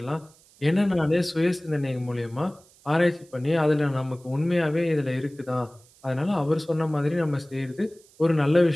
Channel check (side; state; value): right; noise; hiss, 28 dB below the sound